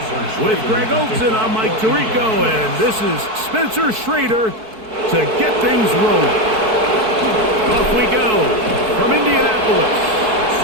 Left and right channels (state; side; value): late; left; 4.6 ms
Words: With Greg Olson, I'm Mike Tirico, and this is Spencer Schrader to get things rolling. Off we go from Indianapolis.